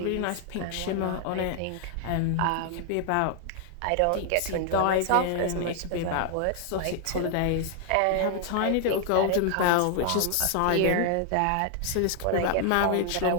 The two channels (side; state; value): both; different; correlation 0.00